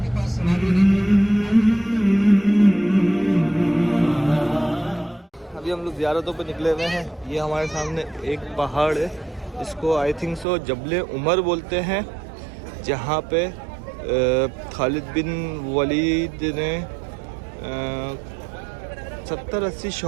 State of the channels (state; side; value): drops out; left; at 10.5 s